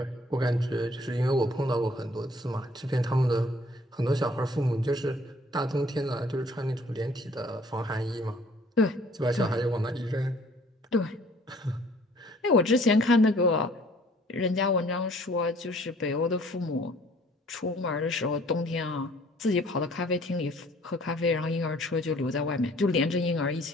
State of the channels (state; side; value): normal; both; correlation 0.56